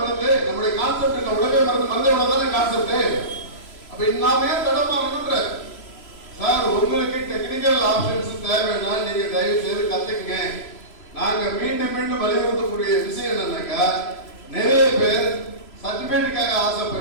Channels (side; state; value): right; late; 3.0 ms